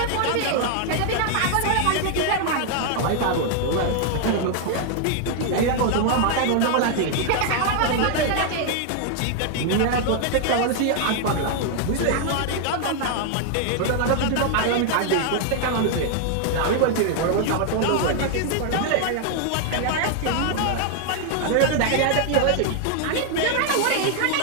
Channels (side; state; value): both; different; correlation 0.00